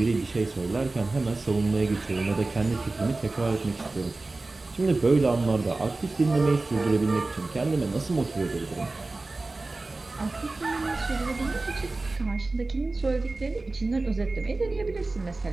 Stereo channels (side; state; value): left; quieter; 3.3 dB